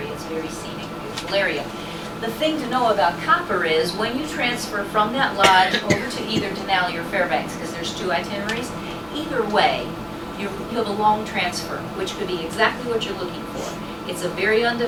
It's a very scenic, beautiful area. The thing to know about Copper is when you transfer from that lodge over to either Denali or Fairbanks, because there's 2 itineraries, either way, you have a long transfer, which could be exactly what you're looking for. It's a very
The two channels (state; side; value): identical; both; correlation 1.00